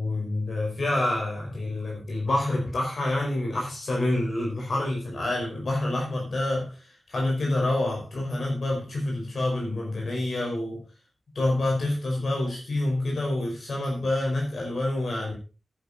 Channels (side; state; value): both; normal; correlation 0.95